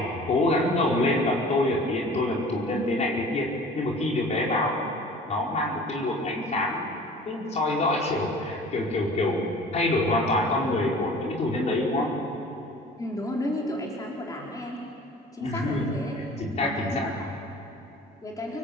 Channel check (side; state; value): both; normal; correlation 0.45